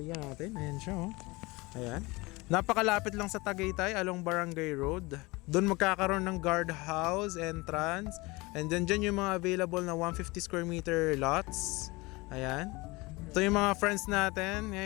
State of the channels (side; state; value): right; quieter; 23.6 dB